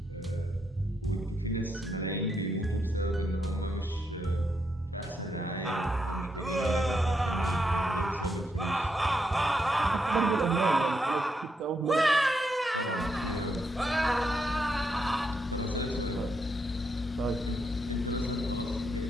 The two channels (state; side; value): normal; both; correlation 0.80